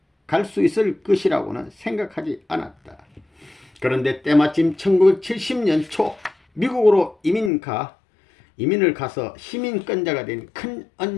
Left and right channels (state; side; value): drops out; right; at 7.5 s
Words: 갈 수 있을 것이라고는 생각하지 않았다. 그런데 때마침 1970년 초 미국으로 이민을 가서 시민권자가 된 큰